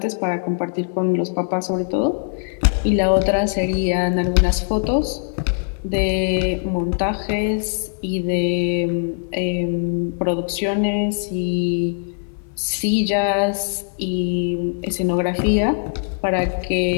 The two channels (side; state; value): right; silent; digital silence